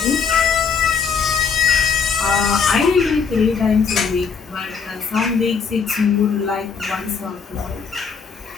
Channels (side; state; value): right; quieter; 5.9 dB